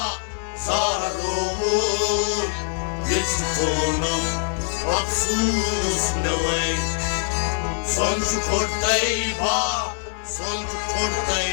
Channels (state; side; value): silent; right; 63 dB below the other